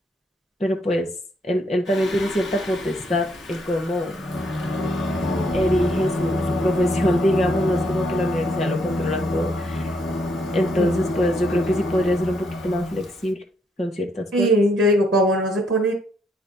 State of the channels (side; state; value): both; normal; correlation 0.73